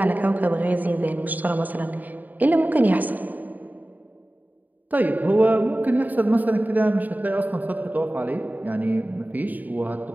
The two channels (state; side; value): late; left; 0.083 ms